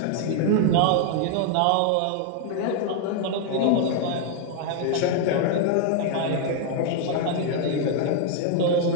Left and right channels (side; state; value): both; different; correlation 0.00